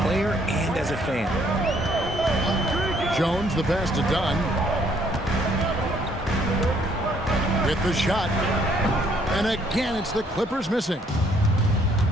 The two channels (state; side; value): normal; both; correlation 0.65